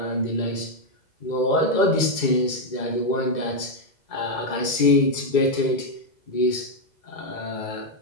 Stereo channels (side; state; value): right; late; 2.2 ms